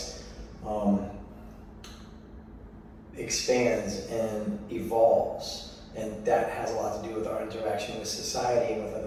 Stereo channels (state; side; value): identical; both; correlation 1.00